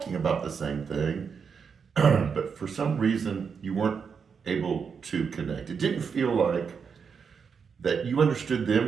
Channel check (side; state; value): left; quieter; 6.2 dB